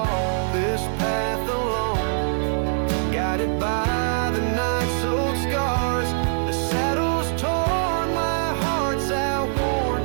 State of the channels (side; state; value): left; silent; digital silence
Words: this path alone, guided by the night's old scars. The saddle's torn, my heart's outworn,